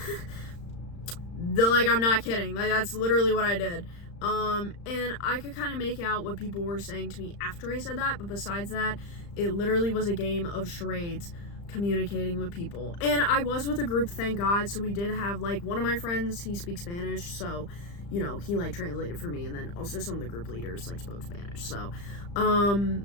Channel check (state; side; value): late; right; 35 ms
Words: I'm not kidding. That's literally what I did. And I could kind of make out what people were saying to me after I said that, but besides that, it literally was a game of charades communicating with people. And I was with a group, thank God, so we did have, one of my friends, he speaks Spanish, so, he, translated for me, and then also some of the group leaders, spoke Spanish, so,